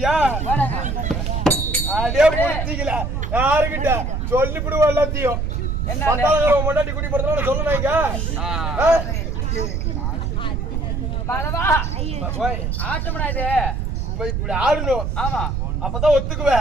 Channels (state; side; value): noise; right; rumble, 1 dB below the sound